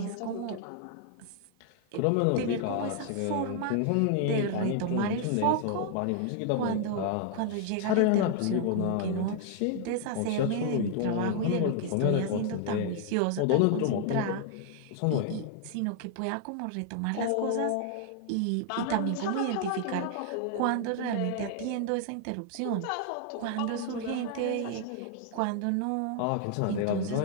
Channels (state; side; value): different; both; correlation 0.00